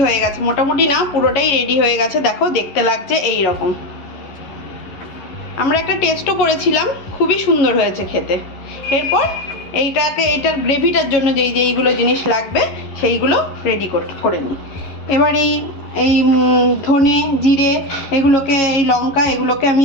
হয়ে গেছে, মোটামুটি না পুরোটাই রেডি হয়ে গেছে। দেখো দেখতে লাগছে এই রকম। আমরা একটা টেস্টও করেছিলাম, খুবই সুন্দর হয়েছে খেতে। এরপর এইটার গ্রেভিটার জন্য যেইগুলো জিনিস লাগবে সেইগুলো রেডি করে নিই। এবার এই ধনে জিরে এগুলোকে, এই লঙ্কা এগুলোকে আমি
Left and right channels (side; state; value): right; late; 11 ms